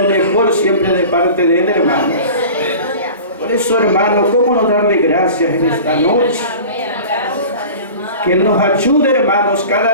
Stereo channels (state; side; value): inverted; both; correlation -0.38